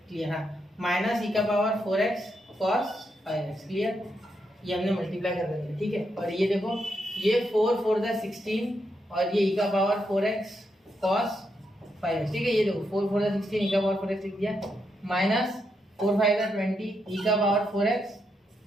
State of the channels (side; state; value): both; normal; correlation 0.81